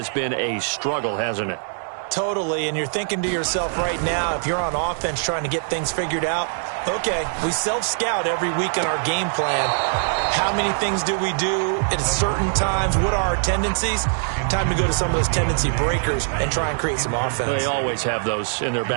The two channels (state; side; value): silent; left; 64 dB below the other